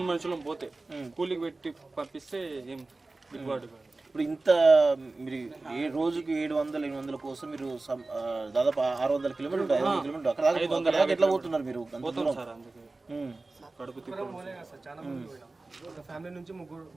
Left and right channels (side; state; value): left; quieter; 3.3 dB